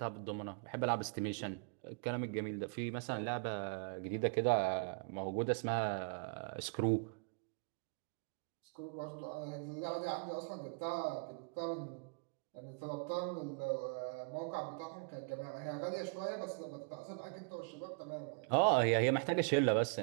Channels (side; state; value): left; quieter; 38.0 dB